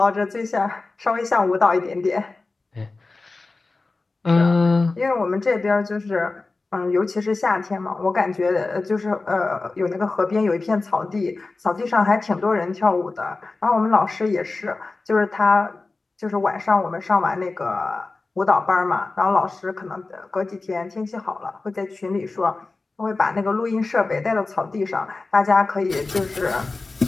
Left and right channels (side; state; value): right; quieter; 3.6 dB